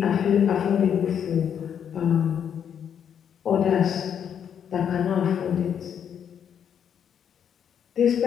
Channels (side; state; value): right; quieter; 8.4 dB